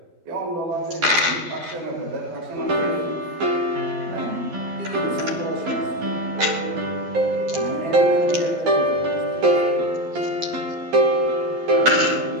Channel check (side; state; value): left; late; 11 ms